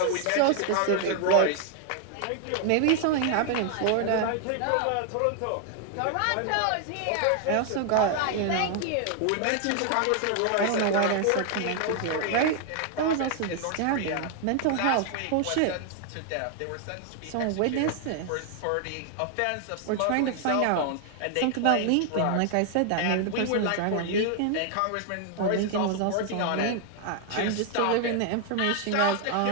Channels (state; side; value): different; both; correlation 0.00